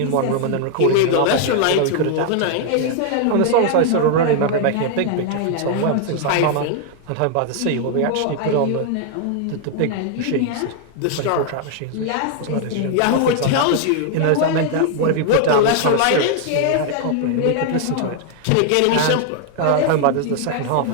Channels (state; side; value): different; both; correlation 0.00